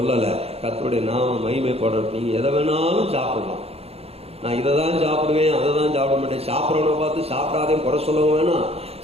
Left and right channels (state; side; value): late; left; 0.29 ms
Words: கர்த்தருடைய நாமம் மகிமைப்படட்டும். நீங்க எதை வேணாலும் சாப்பிடலாம். நான் இதை தான் சாப்பிடுவேன், அதை தான் சாப்பிட மாட்டேன். சாப்பிட்றவனை பார்த்து சாப்பிடாதே குறை சொல்லவும் வேணாம்,